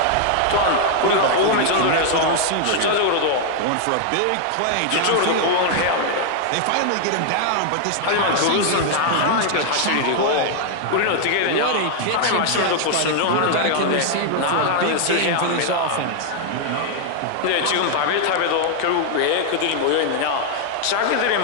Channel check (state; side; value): different; both; correlation 0.00